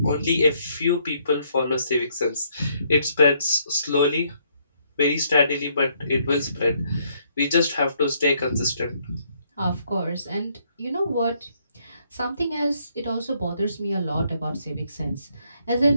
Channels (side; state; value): both; inverted; correlation -0.70